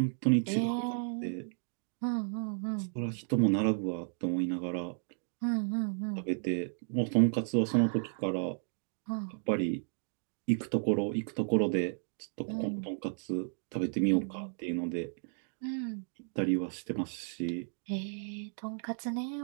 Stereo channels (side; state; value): left; silent; digital silence